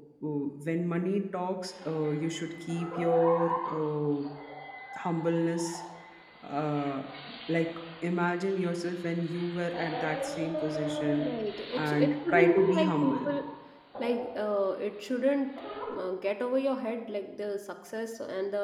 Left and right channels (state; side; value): identical; both; correlation 1.00